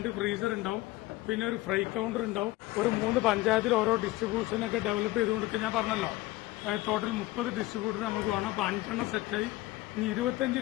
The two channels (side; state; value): right; quieter; 18.4 dB